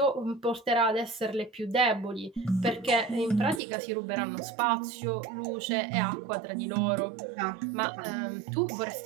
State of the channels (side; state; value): left; drops out; at 3.6 s